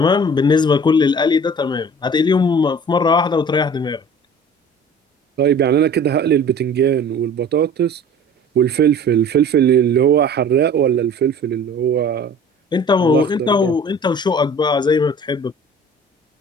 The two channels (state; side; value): normal; both; correlation 0.45